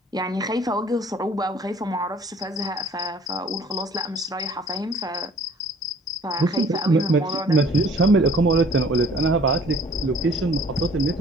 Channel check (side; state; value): both; normal; correlation 0.54